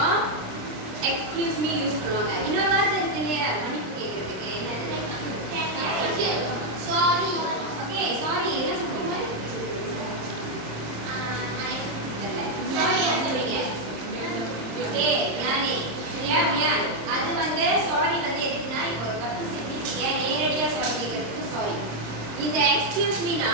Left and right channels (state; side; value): late; left; 26 ms